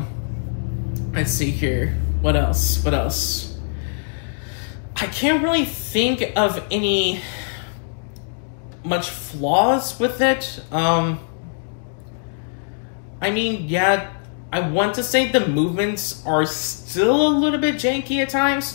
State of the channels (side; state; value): right; silent; digital silence